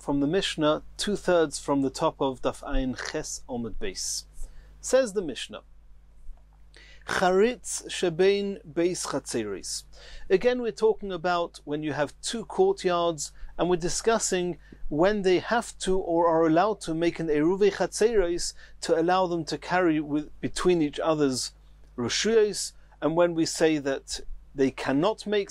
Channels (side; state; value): both; identical; correlation 1.00